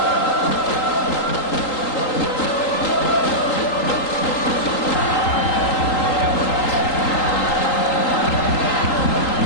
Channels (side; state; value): right; late; 3.8 ms